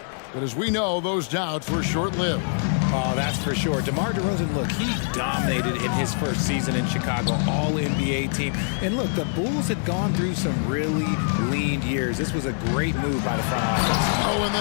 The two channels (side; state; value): right; silent; 62 dB below the other